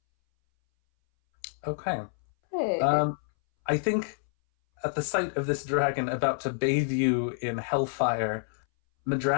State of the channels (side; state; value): right; silent; 59 dB below the other